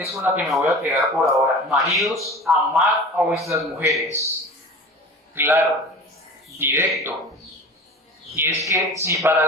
con la que me voy a quedar por ahora. Maridos, amad a vuestras mujeres. Claro, directo. Y es que si para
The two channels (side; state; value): both; normal; correlation 0.37